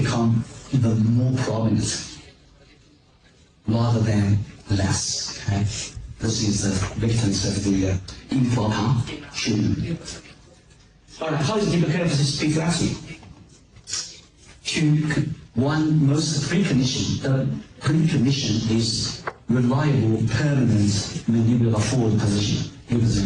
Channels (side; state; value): both; identical; correlation 1.00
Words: even more prominent rather than less. Okay? This is the victims of the improper treatment. Alright, how is deep curve speed acting? Most precondition. The precondition is reliable, permanent mandibular forward position.